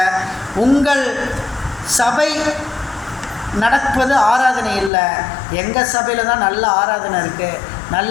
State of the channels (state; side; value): drops out; right; at 4.9 s